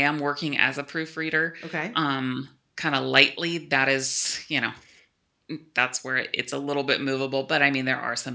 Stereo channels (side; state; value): both; identical; correlation 1.00